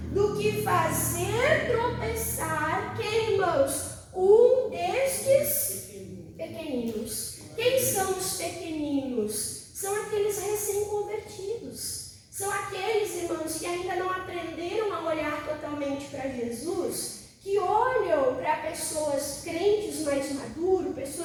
do que fazer tropeçar, quem, irmãos? Um destes pequeninos. Quem são os pequeninos? São aqueles recém-convertidos. São aqueles, irmãos, que ainda não aprenderam a olhar totalmente para Jesus, que olham para pessoas crentes mais maduros,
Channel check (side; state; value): both; identical; correlation 1.00